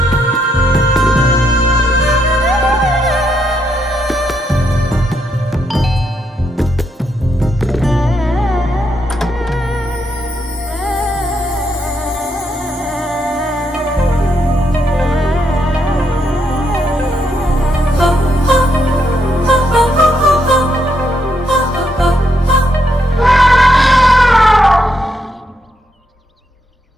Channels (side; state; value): both; normal; correlation 0.78